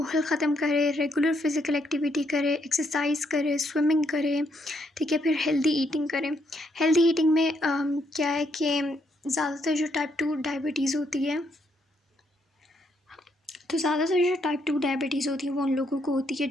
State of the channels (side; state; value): both; normal; correlation 0.74